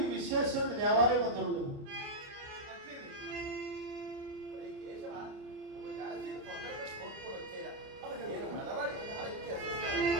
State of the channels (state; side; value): late; left; 29 ms